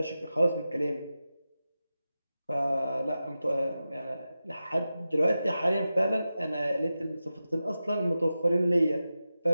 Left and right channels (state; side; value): inverted; both; correlation -0.92